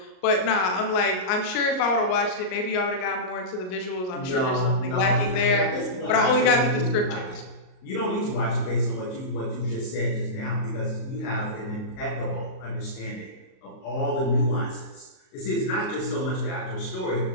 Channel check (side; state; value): right; late; 38 ms